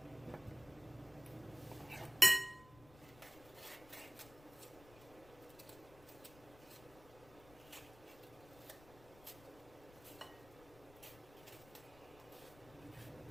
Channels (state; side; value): noise; left; rumble, 21 dB below the sound